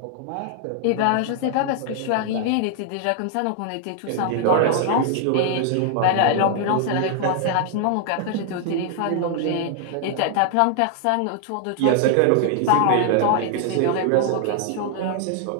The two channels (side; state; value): both; different; correlation 0.00